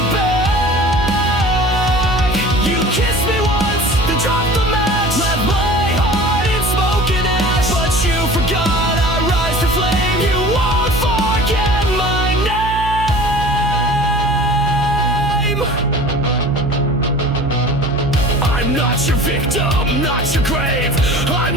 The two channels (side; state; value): right; noise; hum, 6 dB below the sound